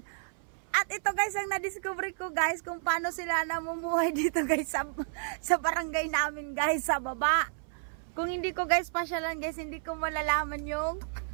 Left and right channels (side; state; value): left; silent; 57 dB below the other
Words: At ito guys, ang na-discover ko guys, kung paano sila namumuhay dito guys sa barangay namin guys, sa baba. Kung hindi ko guys pasyalan guys, hindi ko malalaman yung